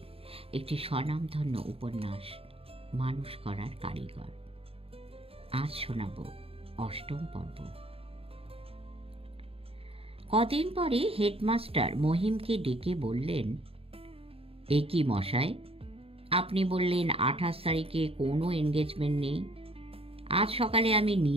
একটি স্বনামধন্য উপন্যাস মানুষ করার কারিগর। আজ শোনাব অষ্টম পর্ব। কদিন পরে হেডমাস্টার মহিমকে ডেকে বললেন, এ কি মশাই, আপনি বললেন 28 তারিখে কোনো এনগেজমেন্ট নেই। আজ সকালে আমি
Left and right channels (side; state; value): left; late; 0.28 ms